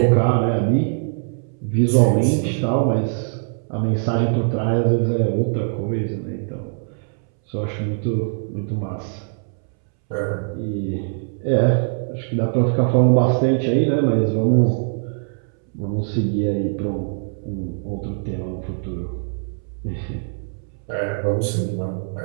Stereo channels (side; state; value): left; silent; 64 dB below the other